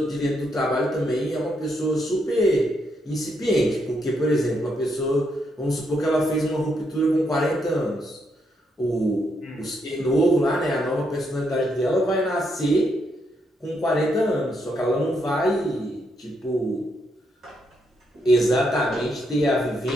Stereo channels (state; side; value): normal; both; correlation 0.78